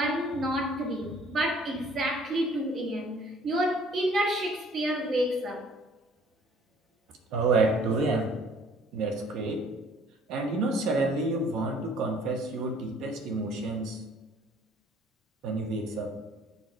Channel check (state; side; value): normal; both; correlation 0.56